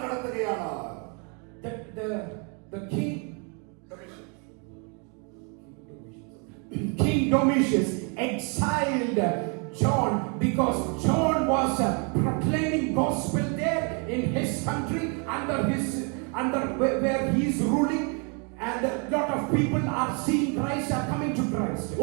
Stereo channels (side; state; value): left; quieter; 36.1 dB